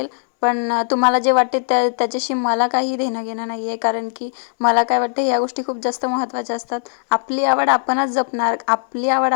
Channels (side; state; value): right; silent; digital silence